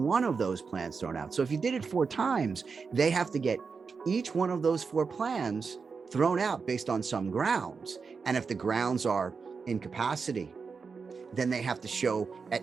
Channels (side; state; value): left; quieter; 5.2 dB